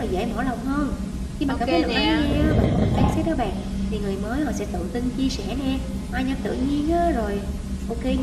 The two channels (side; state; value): both; identical; correlation 1.00